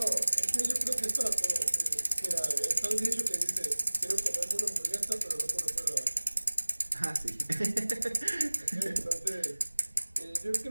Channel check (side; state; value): both; inverted; correlation -1.00